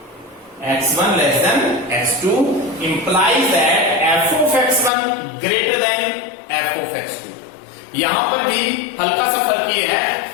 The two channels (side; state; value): right; drops out; at 4.9 s